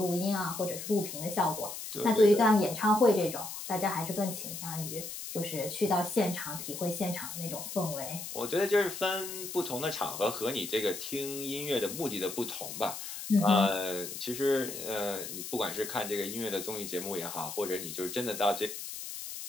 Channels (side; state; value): left; noise; hiss, 8 dB below the sound